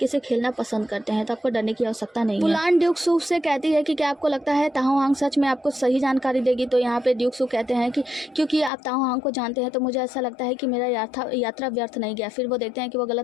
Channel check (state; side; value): drops out; right; at 8.7 s